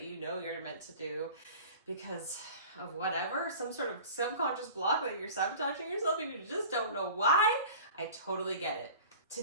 you know you're meant to do because of whatever, some sort of subconscious block that you're sabotaging yourself and you just don't know why. I totally get it.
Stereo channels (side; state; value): both; inverted; correlation -0.41